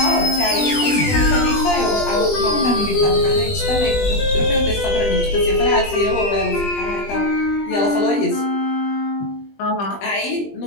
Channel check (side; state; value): right; late; 20 ms